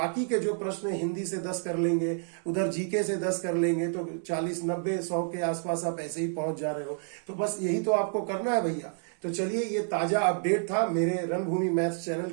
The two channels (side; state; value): left; silent; 58 dB below the other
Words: के जो प्रश्न हिंदी से 10 कर लेंगे, उधर जीके से 10 कर लेंगे, तो 40 90 100 के आसपास आप ऐसे ही पहुंच जा रहे हो। तो बस यही तो आपको करना है भैया। तो चलिए ये ताजा अपडेट था मेरे रणभूमि मैथ्स